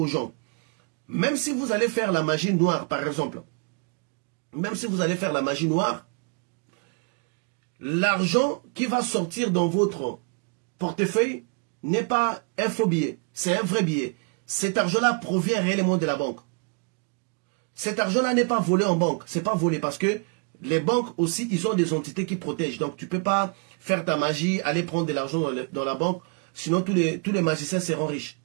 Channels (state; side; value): quieter; left; 35.2 dB